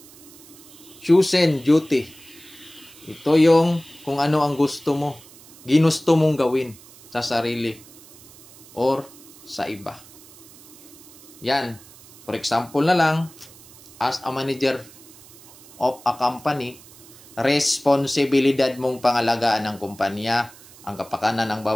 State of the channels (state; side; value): noise; right; hiss, 22 dB below the sound